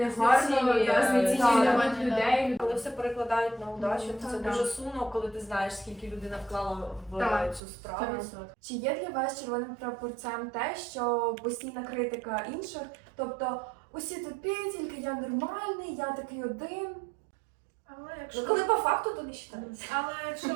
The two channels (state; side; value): drops out; left; at 7.6 s